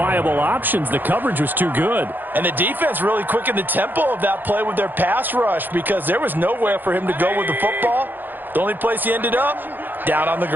options. The coverage was too good. And the defense really quickened the tempo of that play with their pass rush, because there was nowhere for him to go with the football. The only place he ended up, down on the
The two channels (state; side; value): late; left; 0.091 ms